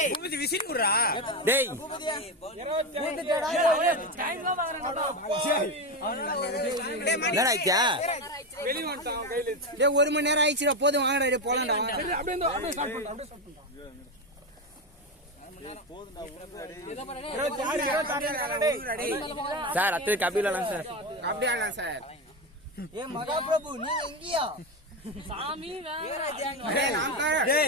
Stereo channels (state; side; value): normal; both; correlation 0.14